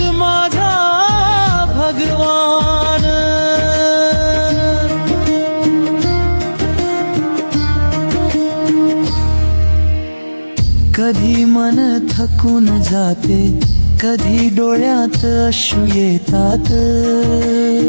माझा भगवान. कधी मन थकून जाते, कधी डोळ्यात अश्रू येतात,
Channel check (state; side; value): inverted; both; correlation -1.00